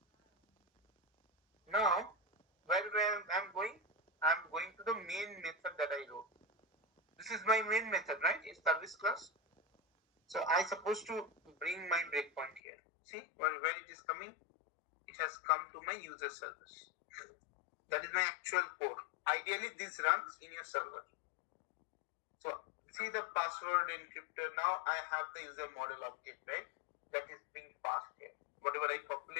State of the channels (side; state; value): right; drops out; at 12.6 s